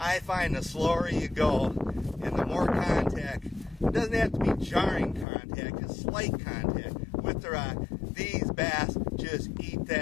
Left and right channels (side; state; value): right; drops out; at 5.2 s